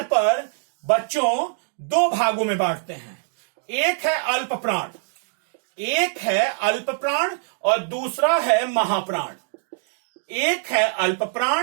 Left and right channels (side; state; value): left; silent; digital silence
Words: पर बच्चों दो भागों में बांटते हैं। एक है अल्प प्राण, एक है अल्प प्राण और दूसरा है महाप्राण। एक है अल्प